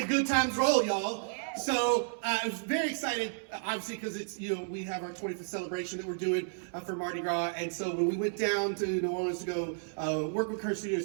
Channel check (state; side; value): silent; left; 56 dB below the other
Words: good times roll, y'all. So I was very excited, obviously, because it's, we have our 25th celebration that we're doing for Mardi Gras. And so when we went down to New Orleans to go work with Curse Studio to